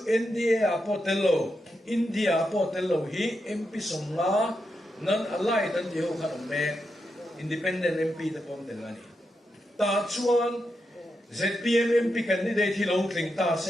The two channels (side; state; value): both; normal; correlation 0.85